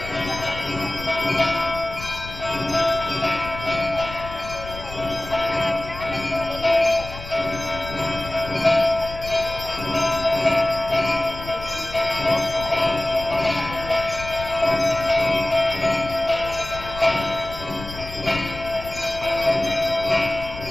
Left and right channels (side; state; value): left; noise; rumble, 12 dB below the sound